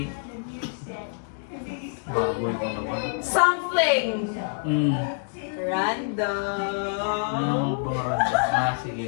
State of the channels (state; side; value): silent; right; digital silence